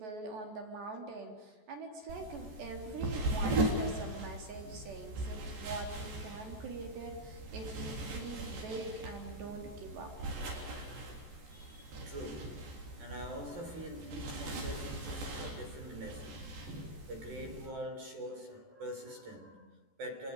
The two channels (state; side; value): late; left; 14 ms